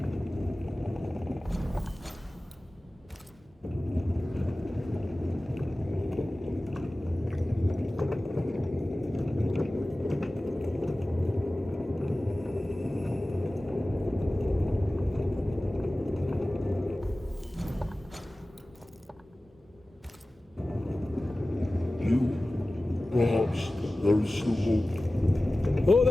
Perhaps there is still hope. Oh,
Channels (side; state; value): both; normal; correlation 0.97